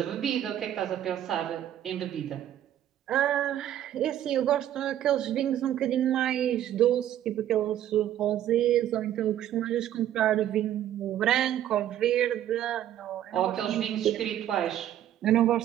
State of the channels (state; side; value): quieter; left; 11.6 dB